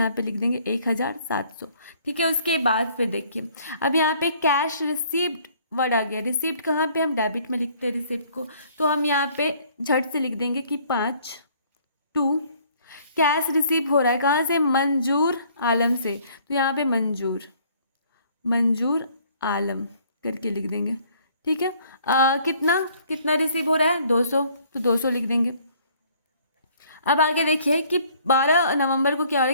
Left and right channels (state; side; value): inverted; both; correlation -0.59